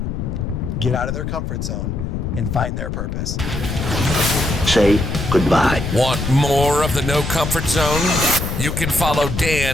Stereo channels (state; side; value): noise; left; rumble, 4 dB below the sound